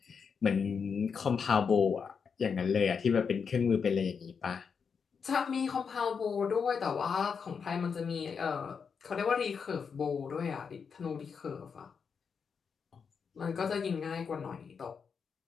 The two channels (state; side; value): quieter; right; 6.1 dB